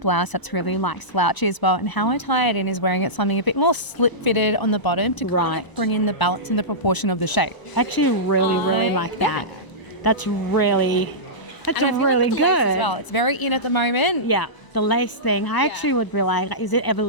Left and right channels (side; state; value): right; late; 1.0 ms